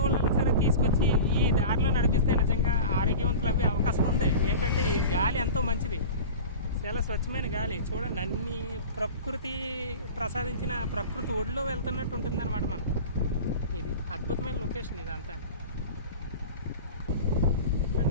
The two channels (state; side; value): inverted; both; correlation -0.34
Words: వాళ్ళని సరే తీసుకొచ్చి ఈ దారిలో నడిపిస్తే నిజంగా ఆరోగ్యవంతులు అవ్వే అవకాశం ఉంది. ఏంటంటే ఈ గాలి ఎంతో మంచిది, చాలా స్వచ్ఛమైన గాలి. చూడండి అన్ని ప్రకృతి ప్రసాదించిన ప్రకృతి ఒడిలో వెళ్తున్నట్టు ఉంటుంది అనమాట మనం. ఇది అద్భుతమైన లొకేషన్ ఇదంతా.